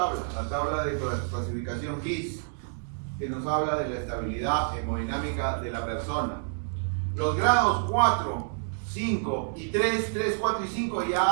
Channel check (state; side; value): silent; left; digital silence